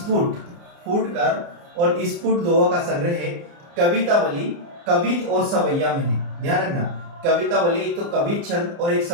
स्फुट दोहों का संग्रह है। कवितावली कवित और सवैया में है। ध्यान रखना, कवितावली तो कवित छंद और एक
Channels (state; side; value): late; left; 29 ms